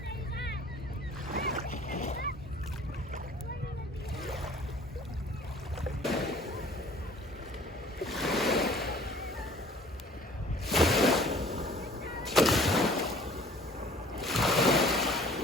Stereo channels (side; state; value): both; normal; correlation 0.51